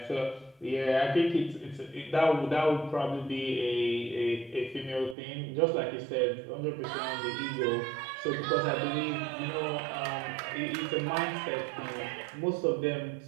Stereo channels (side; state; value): left; drops out; at 5.2 s